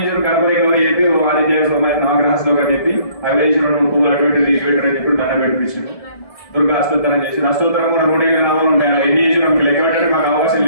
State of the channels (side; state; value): right; late; 1.7 ms